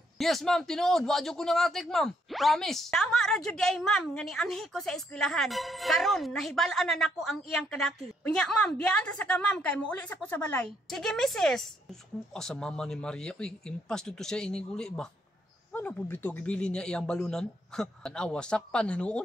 Yes, ma'am. Tinuod. Wadyo ko nangatik, ma'am. Promise. Tama ra jud ay ma'am nga ni anhi ko sa eskwelahan. Karon nahibal-an na nako ang iyang kadaki. Unya ma'am, biyaan ta sa ka ma'am kay muuli sa ko sa balay. Sige misis. Sa mama ni Maria. Uy, impas dito siya iniguli ba? Ano po bito gibili niya iyang balunan? Tanawa, sakpan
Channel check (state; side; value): normal; both; correlation 0.73